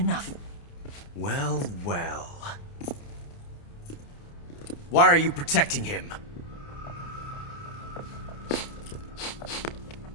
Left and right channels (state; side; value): late; right; 29 ms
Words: Well, well. Why are you protecting him?